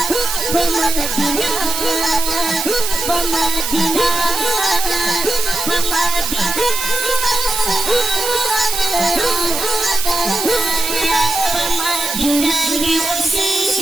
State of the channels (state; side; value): noise; right; hiss, 3 dB below the sound